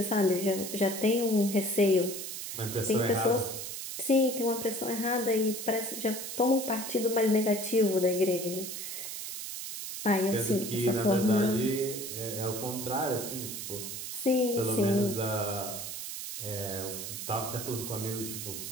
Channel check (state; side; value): noise; right; hiss, 7 dB below the sound